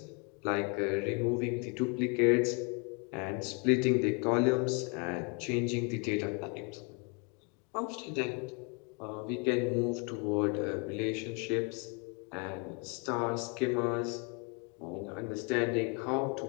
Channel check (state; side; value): quieter; right; 34.7 dB